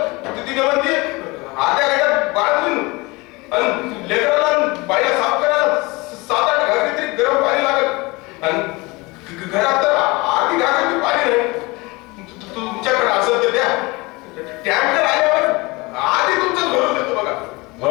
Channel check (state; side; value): quieter; right; 24.4 dB